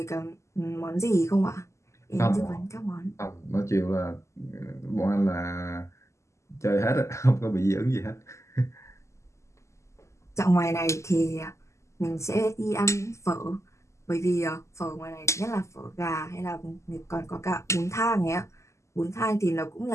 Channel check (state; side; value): late; right; 0.14 ms